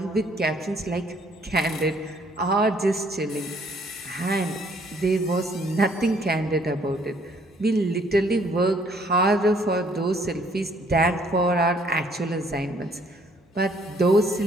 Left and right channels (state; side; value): normal; both; correlation 0.64